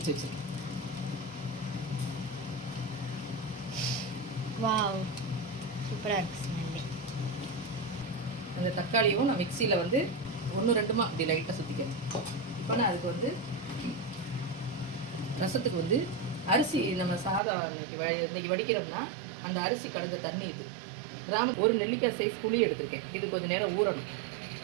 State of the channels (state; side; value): drops out; left; at 17.4 s